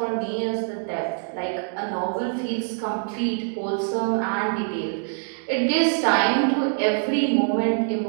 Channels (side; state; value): left; silent; 62 dB below the other